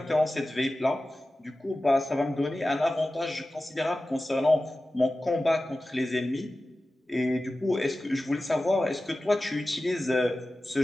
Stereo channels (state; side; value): normal; both; correlation 0.95